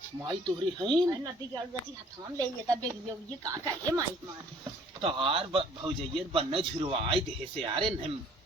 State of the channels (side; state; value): both; normal; correlation 0.57